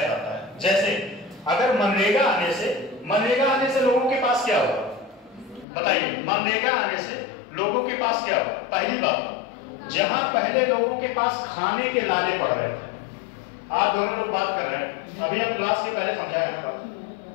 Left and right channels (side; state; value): right; drops out; at 5.7 s